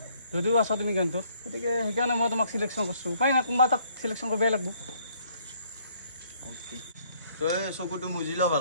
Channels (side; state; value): both; inverted; correlation -0.65